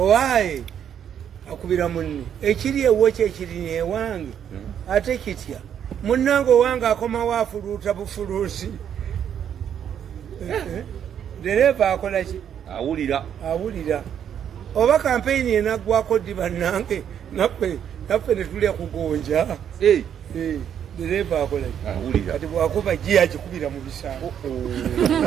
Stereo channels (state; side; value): quieter; left; 9.0 dB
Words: akubira munne ekiri ewo kyekiri ewange ate kitya munnange owange akomawo afuluuta bufuluusi dereva akola ki awulira oba campaign enaggwako ddi bannange naffe netulya kugonja dereva akola kati bwakuba ji akikubira mu bisambo